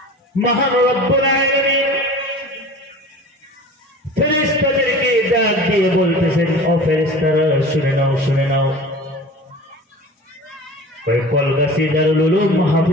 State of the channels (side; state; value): both; normal; correlation 0.39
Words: মহান রব্বুল আলামিন ফেরেশতাদেরকে ডাক দিয়ে বলতেছেন, ও ফেরেশতারা শুনে নাও, শুনে নাও। ওই কলগাছি দারুল উলুম